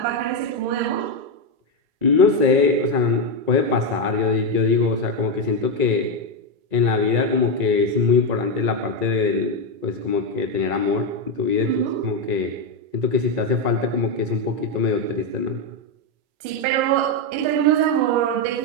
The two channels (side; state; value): left; late; 2.3 ms